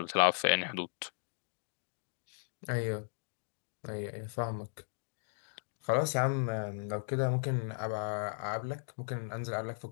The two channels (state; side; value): silent; right; digital silence